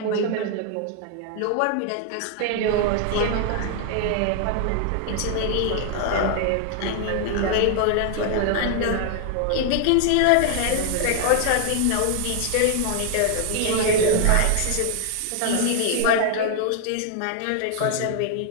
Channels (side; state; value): both; different; correlation 0.00